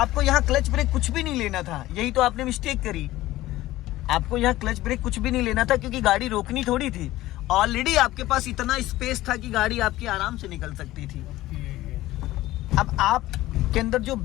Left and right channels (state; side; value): quieter; right; 16.4 dB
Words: यहाँ क्लच ब्रेक कुछ भी नहीं लेना था, यही तो आपने मिस्टेक करी। आपको यहाँ क्लच ब्रेक कुछ भी नहीं लेना था, क्योंकि गाड़ी रोकनी थोड़ी थी। ऑलरेडी आपके पास इतना स्पेस था कि गाड़ी आपकी आराम से निकल सकती थी। अब आप के अंदर जो